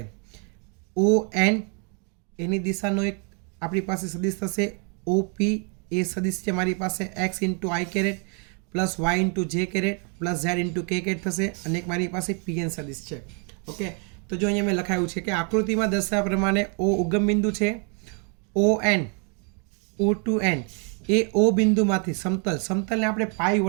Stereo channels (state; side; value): quieter; left; 37.5 dB